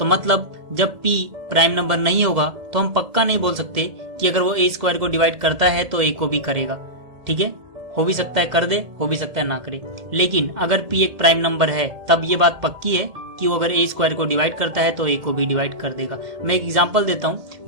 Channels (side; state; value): left; late; 1.8 ms